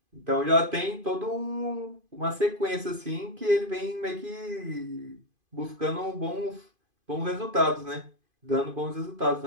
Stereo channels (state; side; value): late; left; 2.5 ms